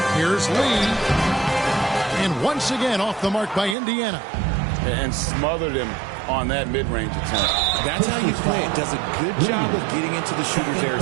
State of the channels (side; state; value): left; drops out; at 3.8 s